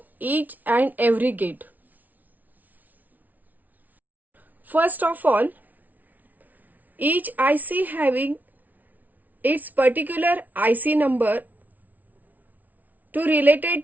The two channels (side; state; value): left; late; 0.078 ms